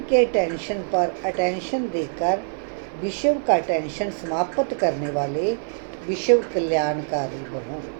के टेंशन पर अटेंशन देकर विश्व का टेंशन समाप्त करने वाले विश्व कल्याणकारी बनो।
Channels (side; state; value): left; silent; 55 dB below the other